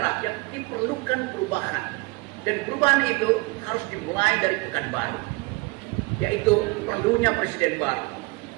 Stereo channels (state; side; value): quieter; left; 25.3 dB